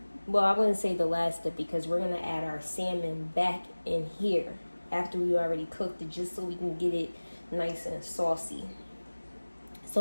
well, I wouldn't say the last step, because we're going to add our salmon back in here. after we already cooked it, just so we can get it nice and saucy. So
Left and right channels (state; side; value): inverted; both; correlation -1.00